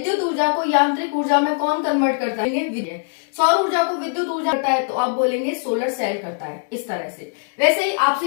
ऊर्जा को यांत्रिक ऊर्जा में कौन कन्वर्ट करता है, सौर ऊर्जा को विद्युत ऊर्जा करता है, तो आप बोलेंगे सोलर सेल करता है, इस तरह से। वैसे ही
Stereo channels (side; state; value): right; silent; digital silence